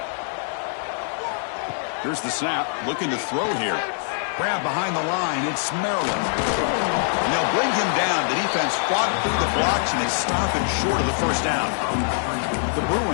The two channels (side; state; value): right; silent; digital silence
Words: Here's the snap. Looking to throw here. Grab behind the line. It's Maryland. And they'll bring him down. The defense fought through the blocks, and they stop him short of the first down. The